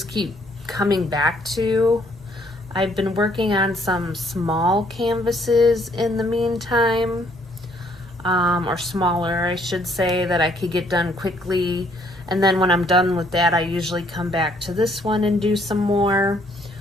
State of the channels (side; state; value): both; normal; correlation 0.66